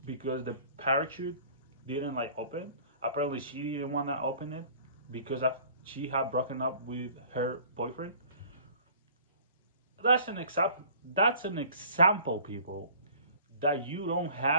because the parachute didn't like open. Apparently, she didn't want to open it because she had broken up with her boyfriend. That's an example. That's an example, people, that you don't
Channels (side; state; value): both; inverted; correlation -0.49